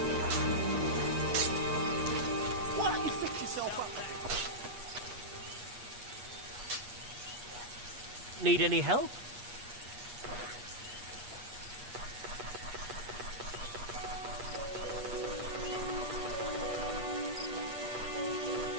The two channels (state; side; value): late; left; 8.3 ms